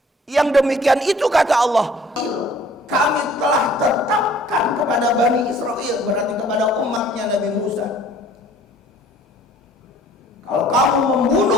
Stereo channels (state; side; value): normal; both; correlation 0.54